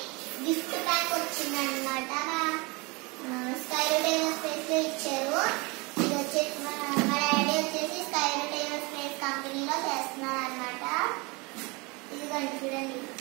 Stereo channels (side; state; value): left; quieter; 27.2 dB